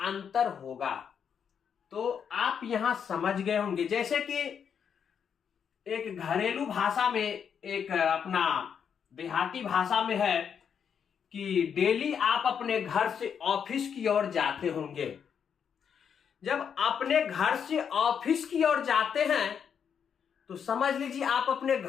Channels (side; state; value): right; quieter; 7.5 dB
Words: होगा। तो आप यहां समझ गए होंगे। जैसे कि एक घरेलू भाषा में, एक अपना देहाती भाषा में है कि डेली आप अपने घर से ऑफिस की ओर जाते होंगे। जब अपने घर से ऑफिस की ओर जाते हैं तो समझ लीजिए आप अपने